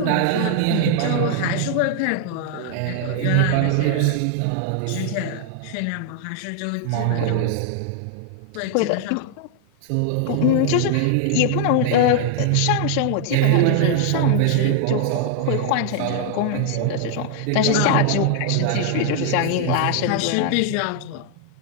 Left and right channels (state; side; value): different; both; correlation 0.00